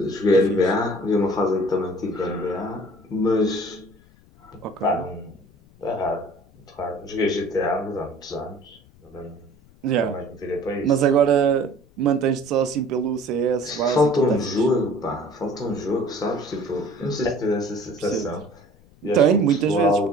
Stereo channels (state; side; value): noise; left; rumble, 27 dB below the sound